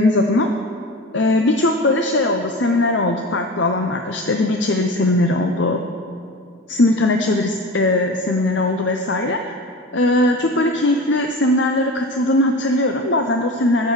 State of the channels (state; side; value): normal; both; correlation 0.32